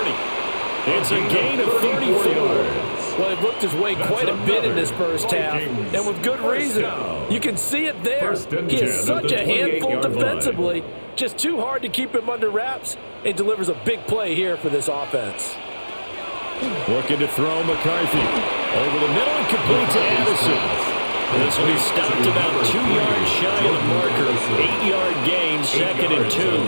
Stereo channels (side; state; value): both; inverted; correlation -1.00